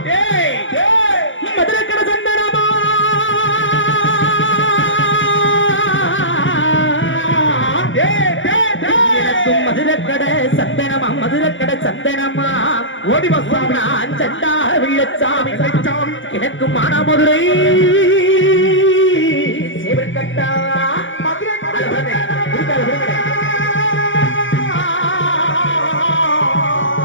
மதுரக்கட சந்தனமா மதுரக்கட சந்தனமா மதுரக்கட சந்தனமா ஓடி வசாமி சண்டா வெள்ளச்சாமி எனக்கு மானாமதுரை சேவற்கட்டா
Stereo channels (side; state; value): right; late; 0.56 ms